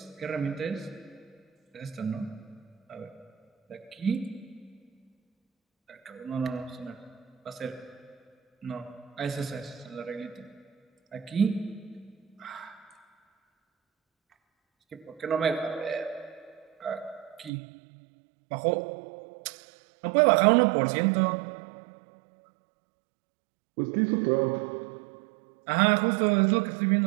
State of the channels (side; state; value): left; drops out; at 17.5 s